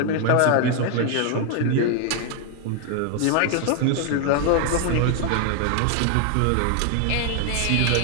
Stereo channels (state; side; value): different; both; correlation 0.00